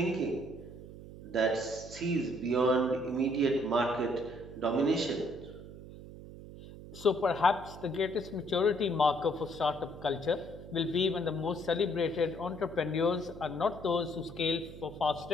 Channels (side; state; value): right; noise; hum, 14 dB below the sound